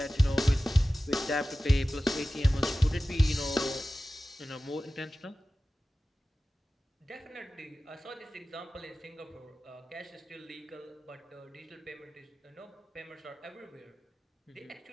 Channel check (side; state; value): both; normal; correlation 0.96